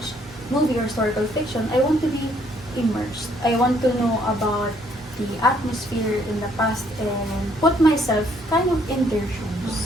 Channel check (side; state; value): both; normal; correlation 0.66